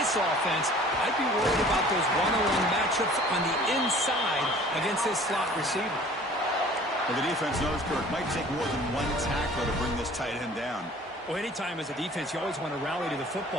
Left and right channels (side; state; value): both; normal; correlation 0.49